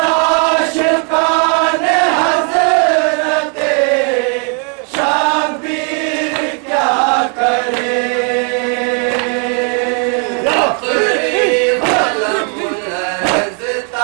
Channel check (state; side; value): quieter; left; 34.7 dB